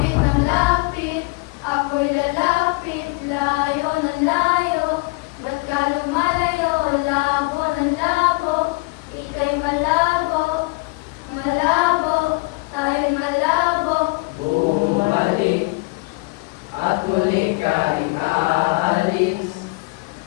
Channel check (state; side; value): quieter; right; 24.5 dB